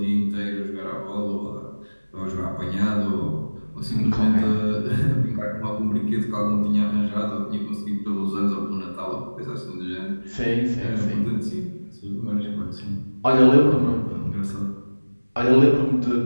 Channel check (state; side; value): inverted; both; correlation -1.00